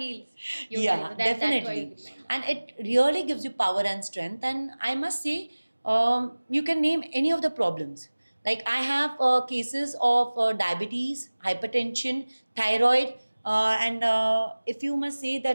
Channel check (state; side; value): inverted; both; correlation -1.00